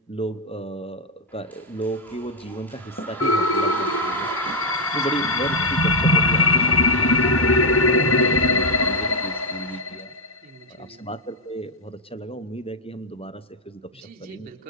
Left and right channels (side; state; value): both; normal; correlation 0.00